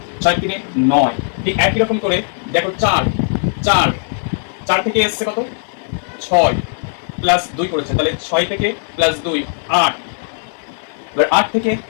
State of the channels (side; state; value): right; silent; digital silence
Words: 6 3 9। ঠিক একই রকম করে দেখো 4 4 4 থেকে এসছে কত 6 প্লাস 2 করেছে, তাহলে 6 থেকে প্লাস 2 8। এবার 8 থেকে